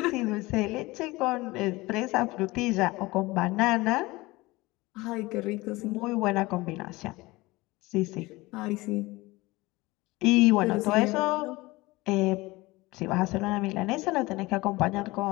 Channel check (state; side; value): quieter; right; 21.3 dB